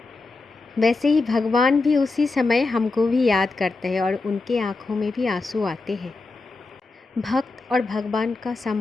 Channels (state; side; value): quieter; right; 3.6 dB